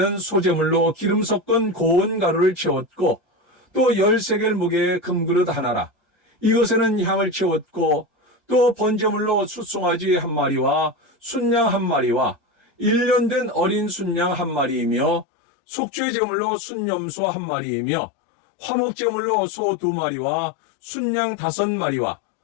소재물로 기름 섞은 고운 가루를 채웠고 또 10세겔 무게의 금그릇 하나라. 이것에는 향을 채웠고 또 번제물로 숫송아지 한 마리와 순양 한 마리와 1년 된 어린 순양 한 마리이며 속죄 제물로 순염소 한 마리이며 화목 제물로 소 2마리와 순양 5마리와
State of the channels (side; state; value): right; drops out; at 15.2 s